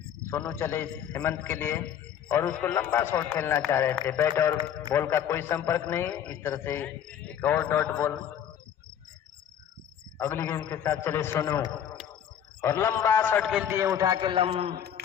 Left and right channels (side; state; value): right; quieter; 9.4 dB